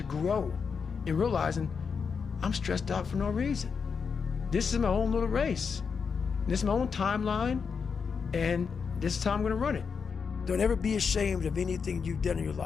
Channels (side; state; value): right; quieter; 5.8 dB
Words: grow in realizing, I'm stressed out for no reason. This is my own little race. This is my own timeline, and this is how I'm gonna run it. Don't ever be ashamed of anything you've done in your